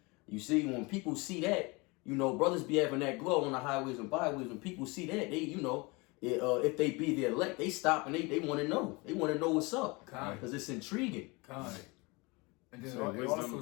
You see, when people see that, brothers be having that glow on the highways and byways. When people see that, they, if they be the elect, they stop and they want to know. They want to know what's up, because it's intriguing. And then it also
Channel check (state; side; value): quieter; right; 26.4 dB